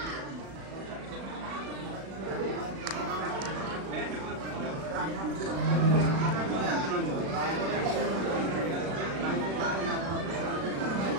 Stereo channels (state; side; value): late; left; 36 ms